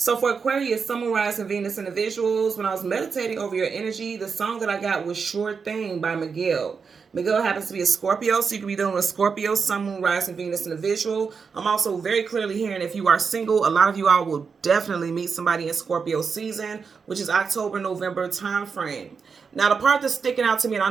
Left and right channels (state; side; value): quieter; left; 5.6 dB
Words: for Aquarius, Sun, Moon, Rising, Venus individuals, when I was meditating over your energy, the song that I got was Sure Thing by Miguel. Miguel happens to be a Scorpio, so you could be dealing with Scorpio, Sun, Moon, Rising, Venus individual. I'm also very clearly hearing if you are single, a lot of you all will definitely meet somebody in Scorpio season, which is October, November time frame. Now, the part that's sticking out to me, and